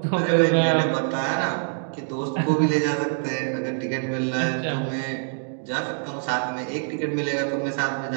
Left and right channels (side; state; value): left; silent; 62 dB below the other